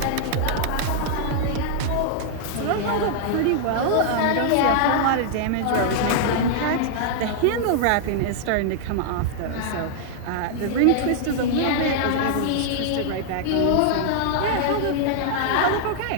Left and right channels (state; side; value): different; both; correlation -0.01